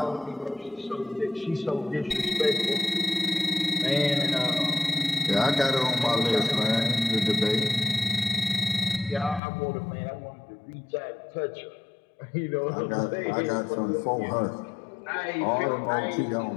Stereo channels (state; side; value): drops out; right; at 9.4 s